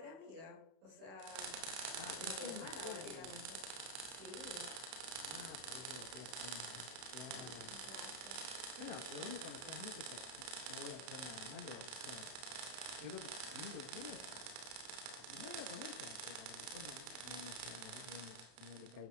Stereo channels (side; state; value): left; late; 31 ms